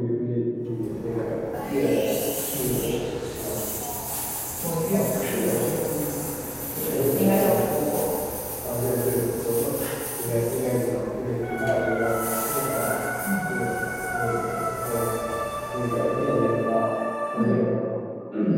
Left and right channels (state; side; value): identical; both; correlation 1.00